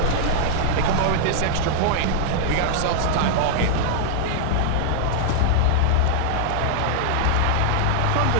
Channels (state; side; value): different; both; correlation 0.00